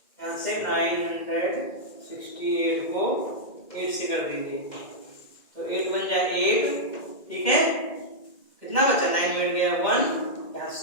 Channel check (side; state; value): right; late; 2.1 ms